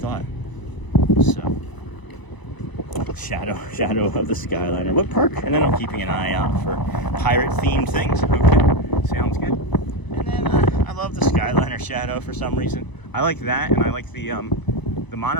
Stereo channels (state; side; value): late; right; 1.0 ms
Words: So, shadow of the Skyliner. What perk? And then I'm keeping an eye out for pirate-themed things. Okay, sounds good. And then I love the Skyliner shadow for some reason. I like that, and I like the